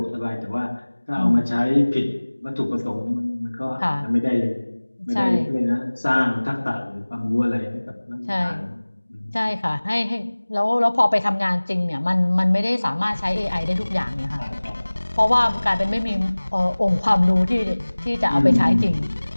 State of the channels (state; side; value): inverted; both; correlation -1.00